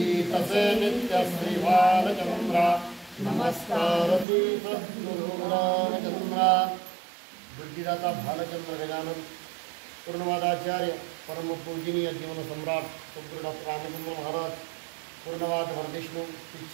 से नित्य श्री बालचंद्रा नमस्कार श्री सद्गुरु रामचंद्रा। बुद्धिदाता भालचंद्र गजानन पूर्णवादाचार्य परम पूजनीय जीवन सम्राट सद्गुरु डॉक्टर रामचंद्र महाराज पूर्णवाद वरविष्णु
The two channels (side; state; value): left; drops out; at 4.2 s